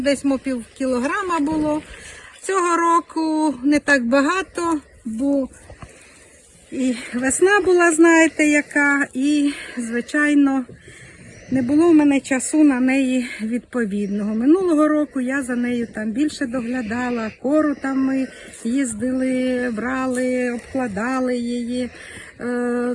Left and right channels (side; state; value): both; identical; correlation 1.00